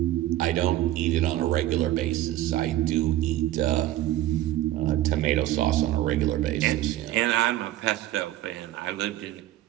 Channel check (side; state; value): left; quieter; 14.4 dB